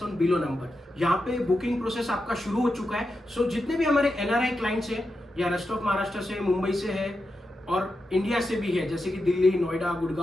on below number. यहाँ पे बुकिंग प्रोसेस आपका शुरू हो चुका है. सो जितने भी हमारे एनआरआई क्लाइंट्स हैं या रेस्ट ऑफ महाराष्ट्र से, मुंबई से है और इंडिया से भी है, जैसे कि दिल्ली, नोएडा,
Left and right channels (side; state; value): both; normal; correlation 0.88